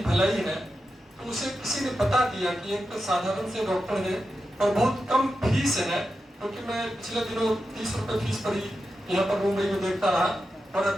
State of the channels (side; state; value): both; normal; correlation 0.90